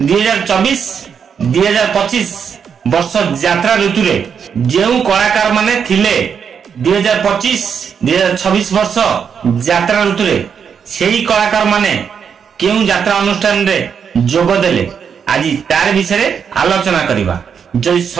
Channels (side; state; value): left; quieter; 7.0 dB